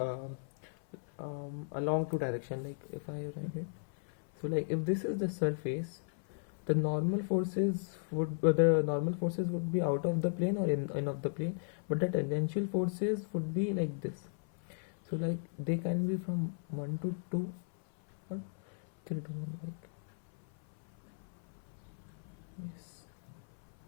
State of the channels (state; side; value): silent; right; 54 dB below the other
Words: along two direction. Like if I write it, so like if this is the surface, the normal forces would be out of the plane or in of the plane, but the tangential forces would be like this. So like they can be from 1 to 2 or 3 to 1, like yes.